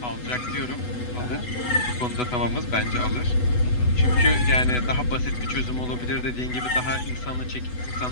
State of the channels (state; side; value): late; right; 8.1 ms